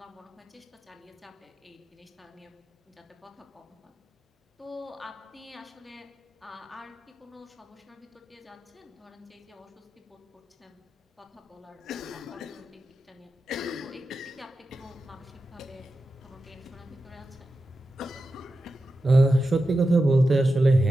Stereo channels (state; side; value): normal; both; correlation 0.91